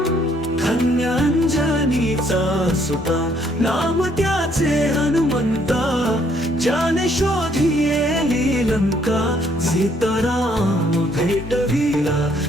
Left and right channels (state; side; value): normal; both; correlation 0.67